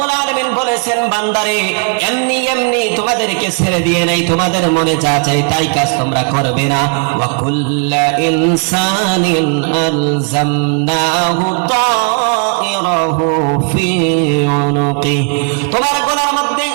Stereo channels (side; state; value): left; quieter; 38.8 dB